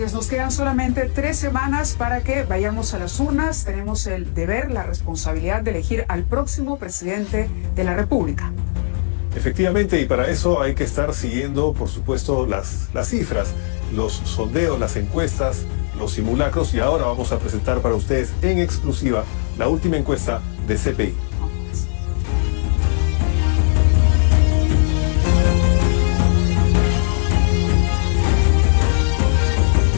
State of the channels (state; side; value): silent; right; digital silence